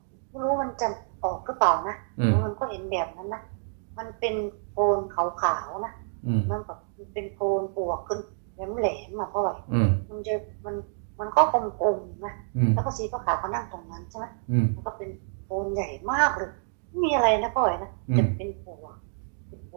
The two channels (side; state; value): left; silent; digital silence